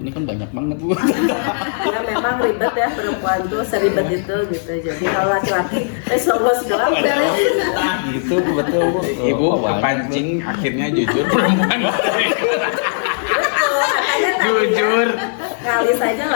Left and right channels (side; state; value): right; silent; digital silence